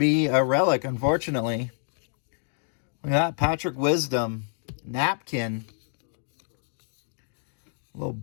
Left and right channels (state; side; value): silent; right; digital silence